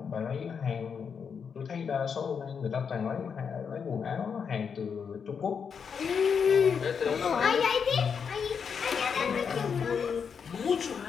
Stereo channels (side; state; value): right; quieter; 6.5 dB